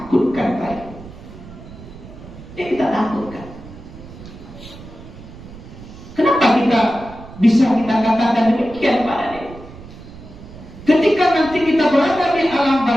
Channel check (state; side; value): noise; right; rumble, 16 dB below the sound